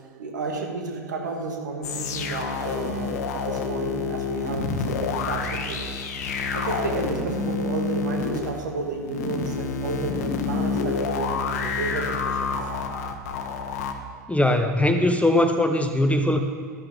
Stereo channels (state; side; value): normal; both; correlation 0.35